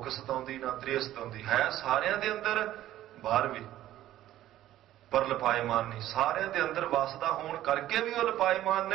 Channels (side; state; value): left; quieter; 13.5 dB